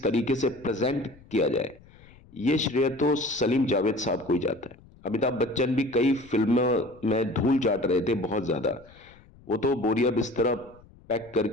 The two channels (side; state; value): left; noise; rumble, 25 dB below the sound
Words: तरीके से प्रेजेंट किया जाए, ये श्रेय तो सलीम जावेद साहब को ही जाता है। अमिताभ बच्चन भी कई फिल्मों में धूल चाट रहे थे बहुत ज्यादा, वो तो बोरिया बिस्तरा पैक